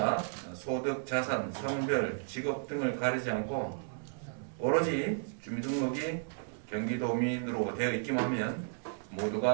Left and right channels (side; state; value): left; silent; digital silence